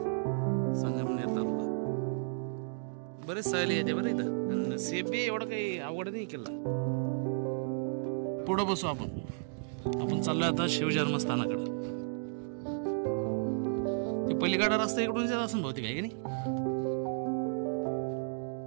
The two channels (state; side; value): silent; left; digital silence